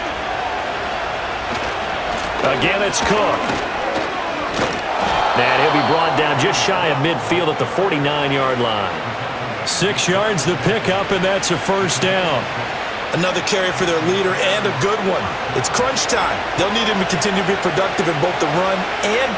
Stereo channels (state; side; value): identical; both; correlation 1.00